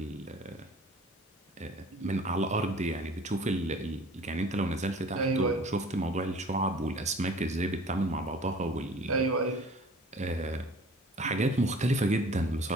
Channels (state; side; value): normal; both; correlation 0.47